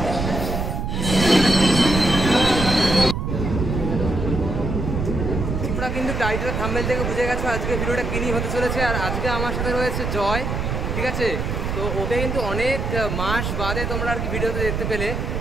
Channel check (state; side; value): noise; right; rumble, 2 dB below the sound